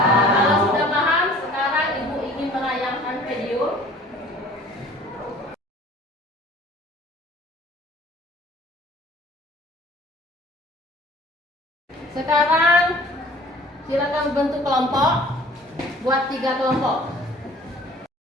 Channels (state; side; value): normal; both; correlation 0.50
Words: Kalau sudah paham, sekarang Ibu ingin menayangkan video Sekarang silakan bentuk kelompok, buat 3 kelompok.